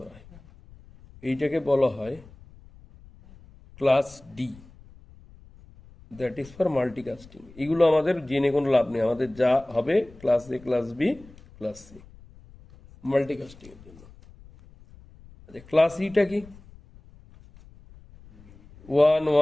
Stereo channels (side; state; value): left; noise; rumble, 23 dB below the sound